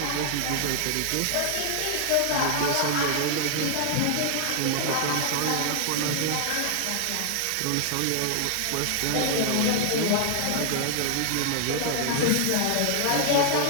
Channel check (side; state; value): both; different; correlation 0.00